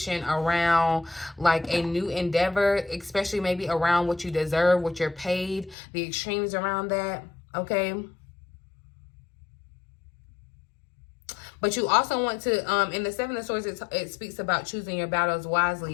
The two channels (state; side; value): drops out; right; at 5.8 s